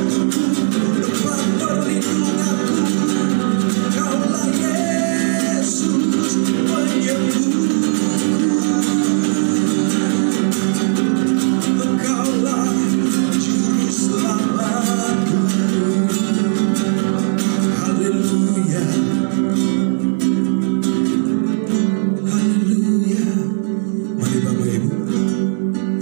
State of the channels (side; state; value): left; silent; digital silence